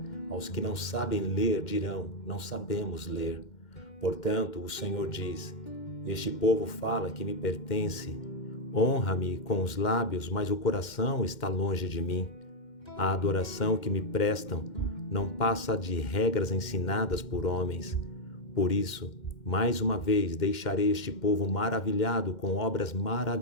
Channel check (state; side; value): late; right; 2.1 ms